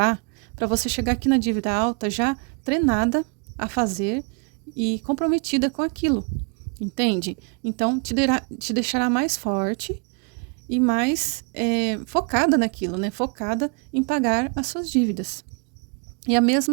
para você chegar aqui na dívida alta já treinada a fazer e comprometida com aquilo, entende? Então, te deixará mais forte e mais focada naquilo, né? Focada em pagar as suas dívidas. E a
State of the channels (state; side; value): quieter; left; 34.7 dB